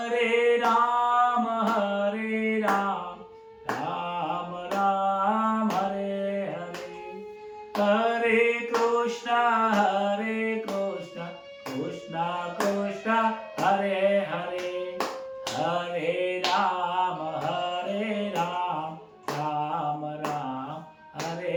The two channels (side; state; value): both; identical; correlation 1.00